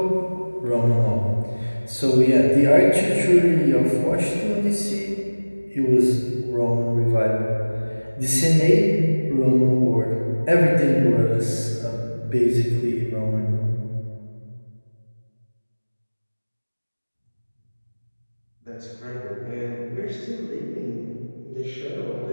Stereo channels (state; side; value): inverted; both; correlation -1.00